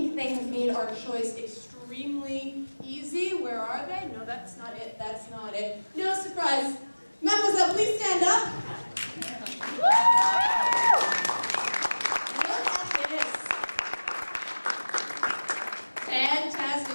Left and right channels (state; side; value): inverted; both; correlation -1.00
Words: they have made our choice extremely easy. Where are they? No, that's not it. That's not it. No surprise. Mademoiselle, please stand up. Woo! Look at this.